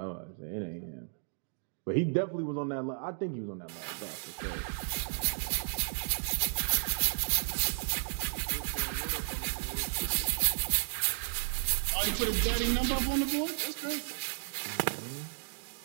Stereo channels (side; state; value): left; silent; digital silence